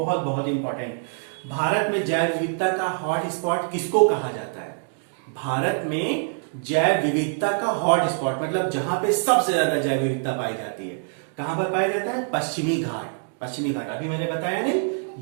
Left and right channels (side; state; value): left; silent; 60 dB below the other